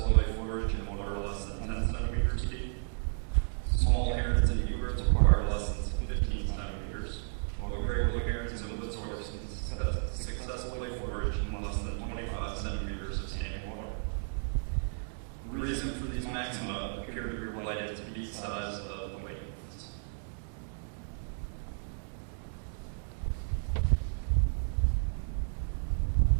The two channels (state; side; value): silent; left; 56 dB below the other